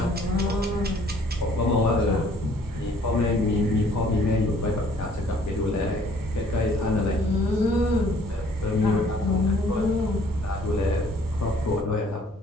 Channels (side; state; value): both; normal; correlation 0.59